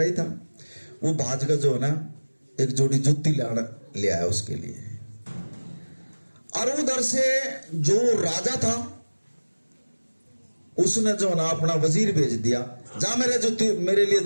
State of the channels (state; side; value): inverted; both; correlation -1.00